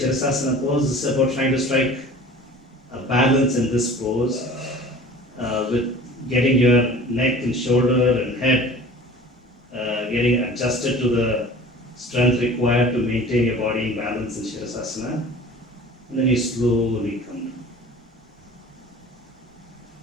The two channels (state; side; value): normal; both; correlation 0.43